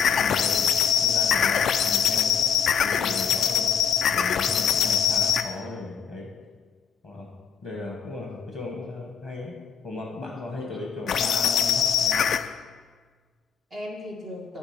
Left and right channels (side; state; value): right; quieter; 7.4 dB